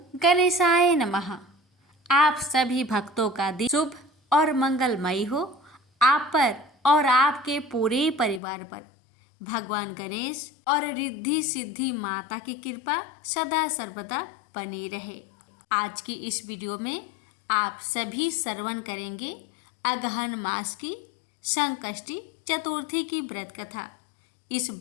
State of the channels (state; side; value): drops out; right; at 8.4 s